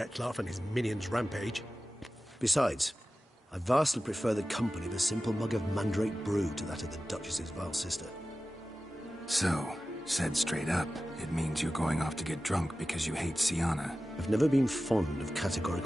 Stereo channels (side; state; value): both; normal; correlation 0.95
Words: and his minions rampage. Besides, I vastly prefer the company of a simple mug of mandrake brew to that of the Duchess's vile sister. So, said straight up, it means you're going off to get drunk because you hate Siana. I've never been fond of